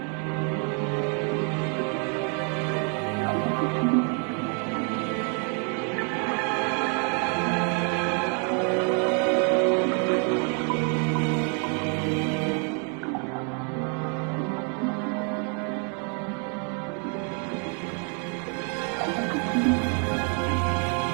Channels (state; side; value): quieter; left; 38.9 dB